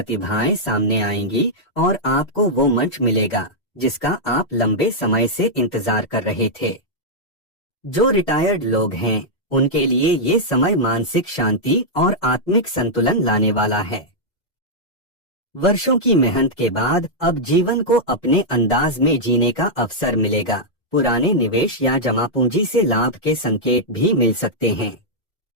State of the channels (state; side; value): late; right; 2.0 ms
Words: सामने आएंगी और आपको वो मंच मिलेगा जिसका आप लंबे समय से इंतजार कर रहे थे। जो रिटायर्ड लोग हैं, उनके लिए ये समय मानसिक शांति और आत्मिक संतुलन लाने वाला है। वर्षों की मेहनत के बाद अब जीवन को अपने अंदाज में जीने का अवसर मिलेगा। पुराने निवेश या जमा पूंजी से लाभ के संकेत भी मिल सकते हैं।